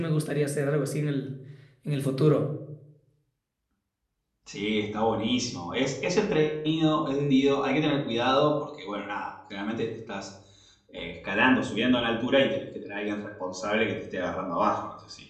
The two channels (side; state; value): both; identical; correlation 1.00